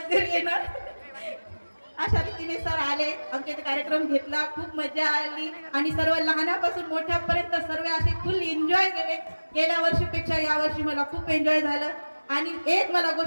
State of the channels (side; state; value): both; inverted; correlation -1.00